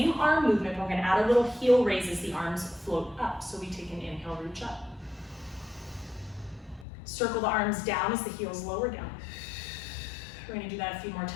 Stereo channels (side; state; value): right; drops out; at 6.9 s